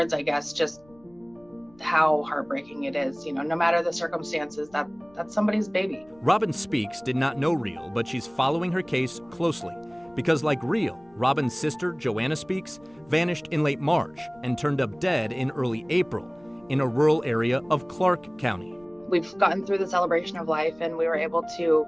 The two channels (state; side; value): noise; left; rumble, 29 dB below the sound